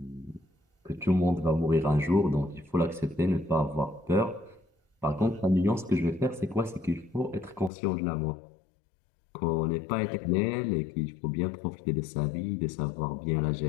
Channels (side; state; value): right; drops out; at 7.7 s